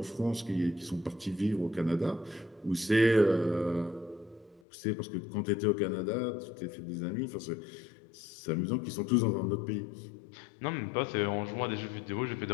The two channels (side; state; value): right; drops out; at 4.6 s